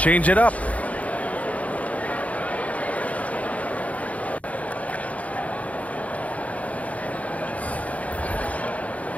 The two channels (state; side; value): late; right; 0.068 ms